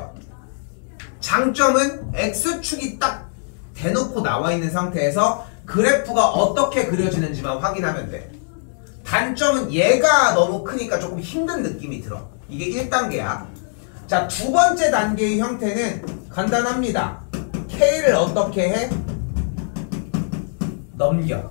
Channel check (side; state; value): right; silent; 64 dB below the other